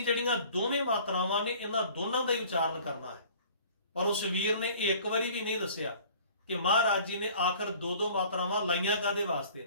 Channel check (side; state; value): both; inverted; correlation -0.50